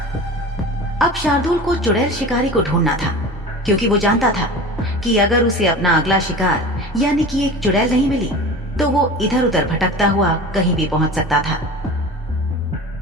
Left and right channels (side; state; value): both; normal; correlation 0.35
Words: अब शार्दुल को चुड़ैल शिकारी को ढूंढना था, क्योंकि वो जानता था कि अगर उसे अपना अगला शिकार यानी कि एक चुड़ैल नहीं मिली तो वो इधर उधर भटकता हुआ कहीं भी पहुंच सकता था।